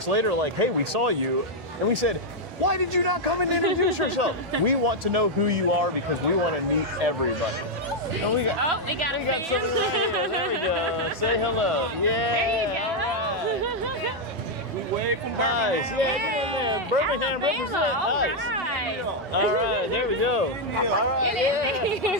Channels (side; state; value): both; normal; correlation 0.00